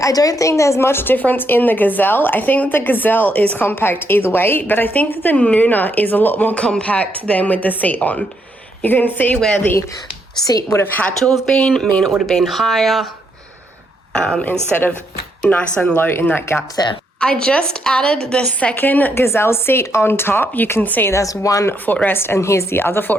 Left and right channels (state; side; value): normal; both; correlation 0.76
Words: I don't think there's much difference in the Gazelle. I think that the Gazelle is compact either way, but I think that the Nuna is a lot more compact than with the seat on. You can see where the seat would have had to have been, mean it would have been higher instead of nice and low in that gap there. I just added the second Gazelle seat on top. You can see there's one footrest and here's the other